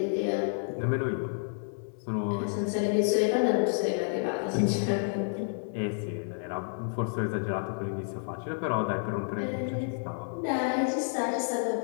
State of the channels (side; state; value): right; silent; digital silence